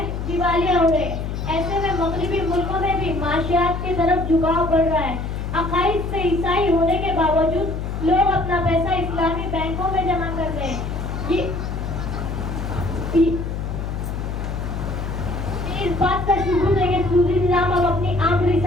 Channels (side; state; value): left; noise; hum, 4 dB below the sound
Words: दिवालिया हो रहे। ऐसे में मगरबी मुल्कों में भी माशियात की तरफ झुकाव बढ़ रहा है। अकाइद से ईसाई होने के बावजूद लोग अपना पैसा इस्लामी बैंकों में जमा कर रहे हैं। इस बात का सबूत है कि सूदी निजाम अब अपनी आखिरी